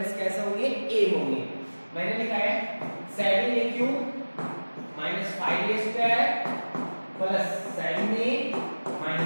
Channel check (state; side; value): inverted; both; correlation -1.00